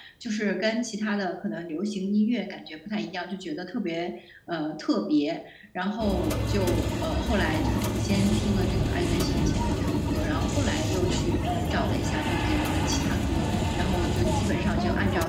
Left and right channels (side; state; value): both; identical; correlation 1.00